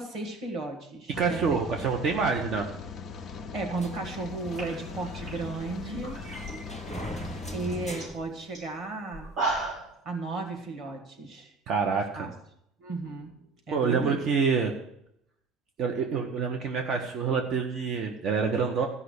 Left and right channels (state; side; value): quieter; left; 4.0 dB